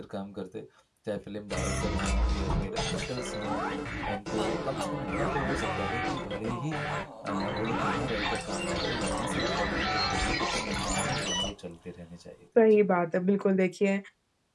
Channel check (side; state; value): both; identical; correlation 1.00